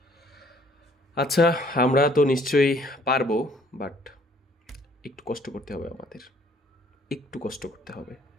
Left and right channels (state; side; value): normal; both; correlation 0.60